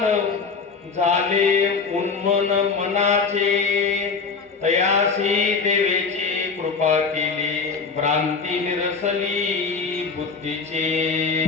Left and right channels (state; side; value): quieter; right; 5.0 dB